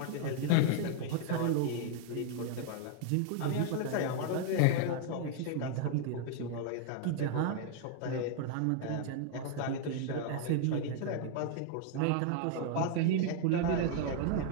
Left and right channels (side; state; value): both; different; correlation 0.00